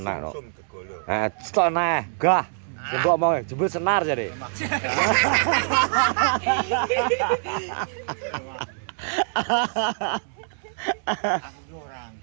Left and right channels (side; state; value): left; silent; digital silence